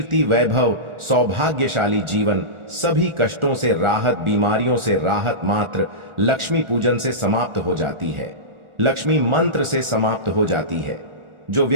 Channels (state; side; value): late; left; 1.4 ms